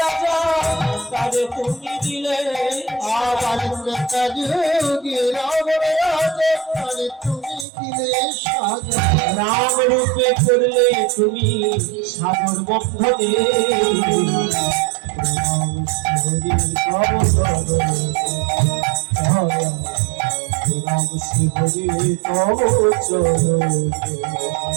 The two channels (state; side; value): drops out; left; at 7.7 s